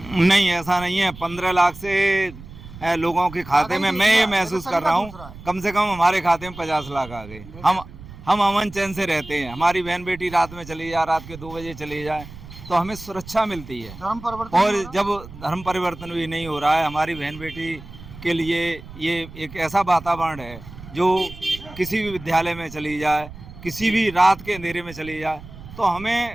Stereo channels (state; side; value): noise; right; rumble, 16 dB below the sound